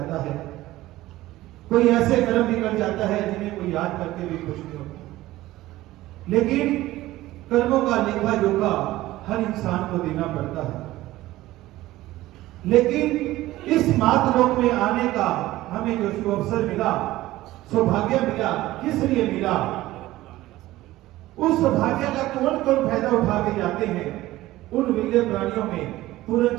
है, कोई ऐसे कर्म भी कर जाता है जिन्हें कोई याद करके भी खुश नहीं होता। लेकिन कर्मों का लेखा जोखा हर इंसान को देना पड़ता है। लेकिन इस मातलोक में आने का हमें जो अवसर मिला, सौभाग्य मिला, किस लिए मिला? उस सौभाग्य का कौन कौन फायदा उठा के जाते हैं? उन विरले प्राणियों में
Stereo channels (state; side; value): quieter; left; 16.6 dB